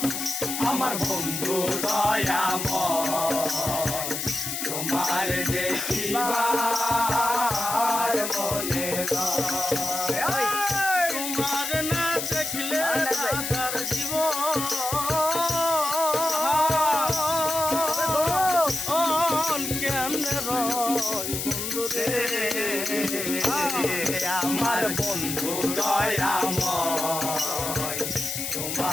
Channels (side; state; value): left; noise; hiss, 3 dB below the sound